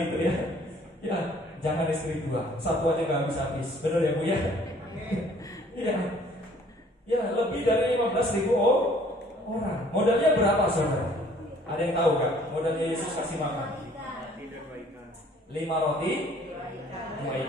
itu ya. Ya, jangan istri dua, satu aja nggak habis-habis. Benar ya Bu ya? Iya. Ya, lebih dari 15.000 orang. Modalnya berapa saudara? Ada yang tahu gak? Modalnya Yesus kasih makan 5 roti 2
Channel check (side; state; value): both; normal; correlation 0.57